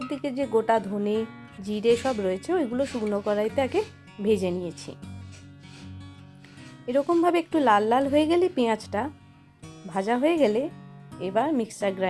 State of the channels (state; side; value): identical; both; correlation 1.00